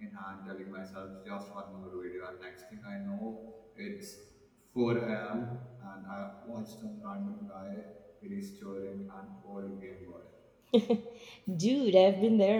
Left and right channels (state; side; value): identical; both; correlation 1.00